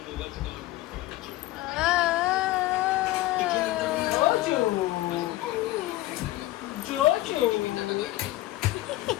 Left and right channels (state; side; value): quieter; right; 17.0 dB